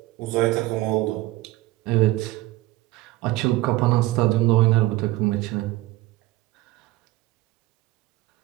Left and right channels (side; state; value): left; quieter; 17.7 dB